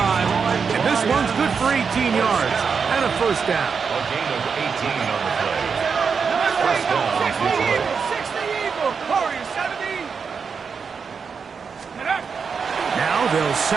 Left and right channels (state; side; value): quieter; left; 5.8 dB